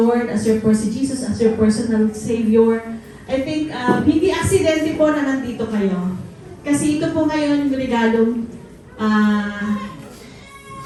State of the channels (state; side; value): identical; both; correlation 1.00